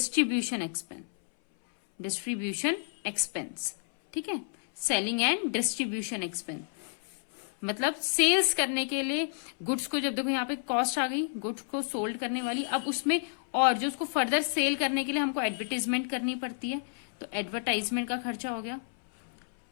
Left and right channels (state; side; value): silent; right; 58 dB below the other